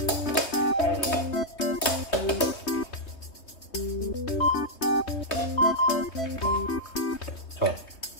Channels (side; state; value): right; late; 3.2 ms